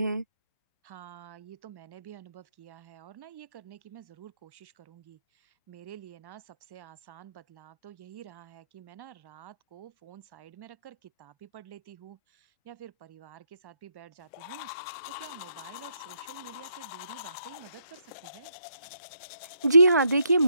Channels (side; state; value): both; inverted; correlation -0.76